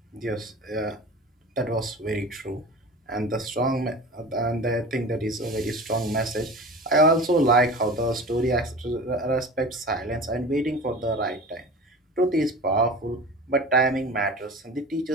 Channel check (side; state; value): both; normal; correlation 0.36